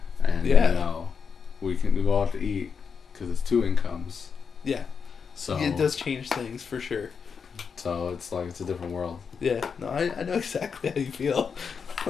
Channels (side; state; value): right; quieter; 6.1 dB